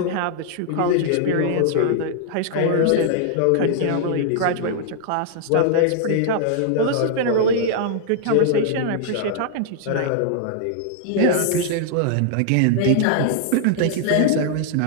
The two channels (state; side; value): different; both; correlation -0.01